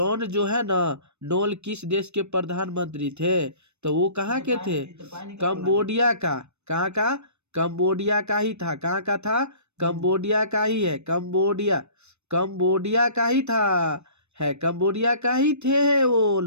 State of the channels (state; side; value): late; left; 0.81 ms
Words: जो है ना, नोल किस देश के प्रधानमंत्री थे? तो वो कहाँ के थे? कंबोडिया का। कहाँ का? कंबोडिया का ही था। कहाँ का था? कंबोडिया का ही है। कंबोडिया का ही था, है कंबोडिया का ही थे वो